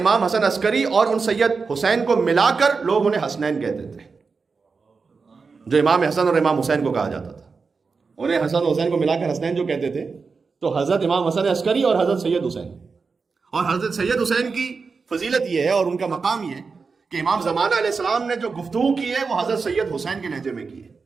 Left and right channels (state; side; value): quieter; left; 4.8 dB